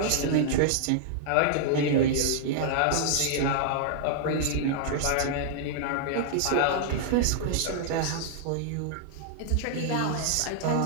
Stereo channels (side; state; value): both; different; correlation -0.01